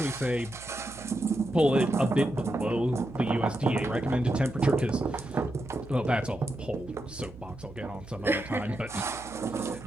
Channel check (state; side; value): noise; right; hum, 17 dB below the sound